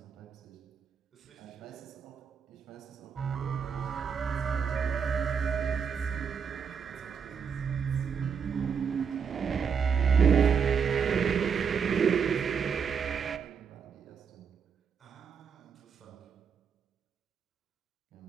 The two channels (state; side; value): quieter; left; 6.6 dB